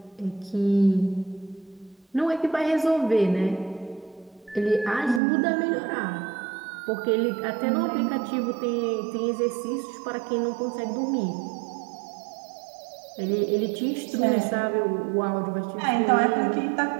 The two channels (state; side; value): drops out; left; at 5.2 s